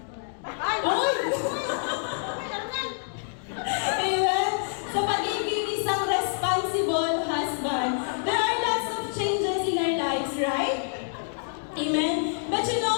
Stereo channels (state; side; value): silent; right; digital silence